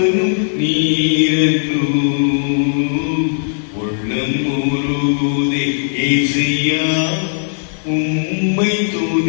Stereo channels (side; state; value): right; silent; digital silence